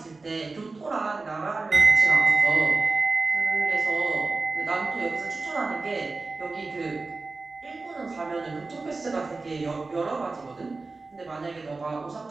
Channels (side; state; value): left; quieter; 3.7 dB